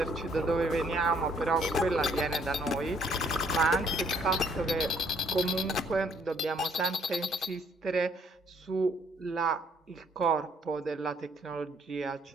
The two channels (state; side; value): normal; both; correlation 0.65